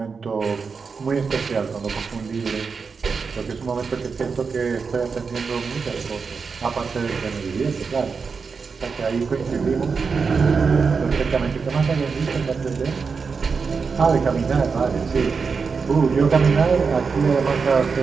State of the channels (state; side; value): quieter; left; 5.2 dB